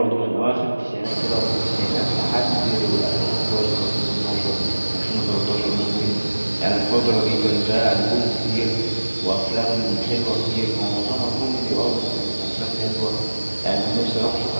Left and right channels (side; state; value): both; inverted; correlation -1.00